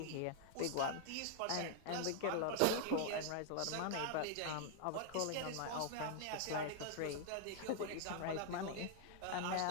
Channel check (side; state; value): both; different; correlation 0.00